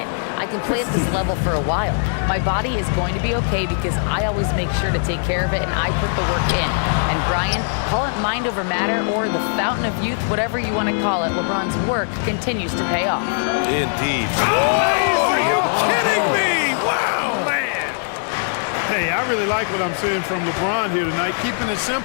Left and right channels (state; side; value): silent; right; digital silence